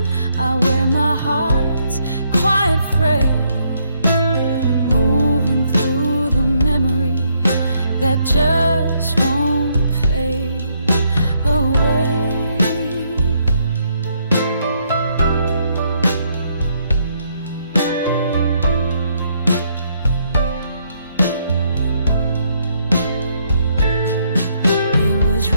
I wear my heart's quiet prayer, moving through the memory that just won't fade away. It was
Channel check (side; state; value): both; inverted; correlation -0.73